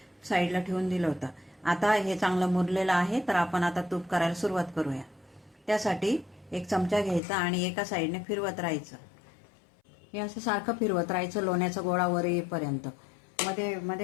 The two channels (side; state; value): right; drops out; at 7.2 s